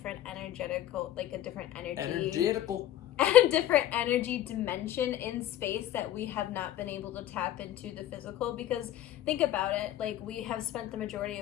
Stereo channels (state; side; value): quieter; right; 12.6 dB